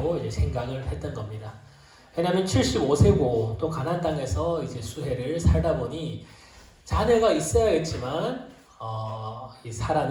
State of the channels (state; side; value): identical; both; correlation 1.00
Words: 이제 생각을 했던 겁니다. 왜냐하면 75세고 또 가나안 땅에서 이제 수해를 살다 보니 자녀가 있어야겠지만 이